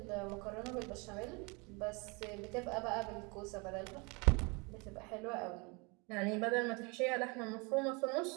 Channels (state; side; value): quieter; left; 29.4 dB